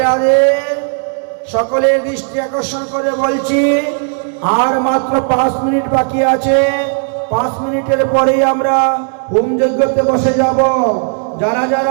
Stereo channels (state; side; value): silent; left; 55 dB below the other